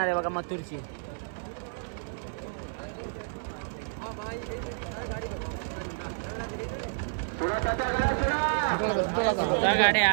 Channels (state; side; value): silent; left; 58 dB below the other